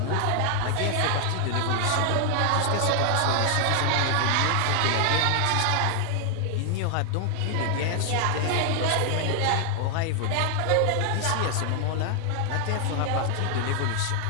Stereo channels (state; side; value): different; both; correlation 0.00